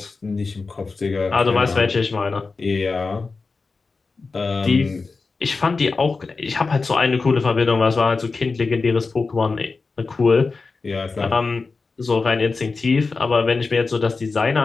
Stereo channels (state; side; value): quieter; right; 4.2 dB